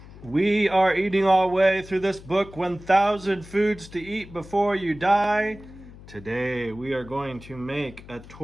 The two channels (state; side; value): noise; left; hum, 18 dB below the sound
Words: We are eating our way through this book, 1,000 Foods to Eat Before You Die. Today we are going to make a